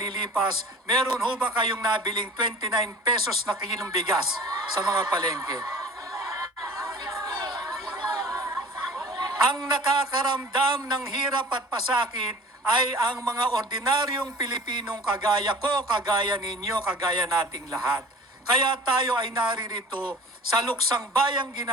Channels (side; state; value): both; normal; correlation 0.44